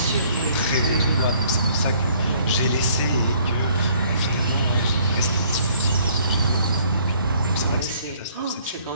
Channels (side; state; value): both; inverted; correlation -0.60